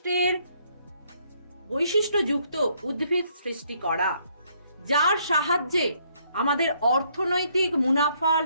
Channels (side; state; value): both; inverted; correlation -0.69